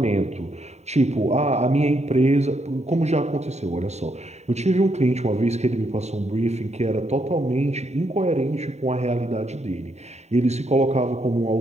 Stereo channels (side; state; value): left; late; 0.32 ms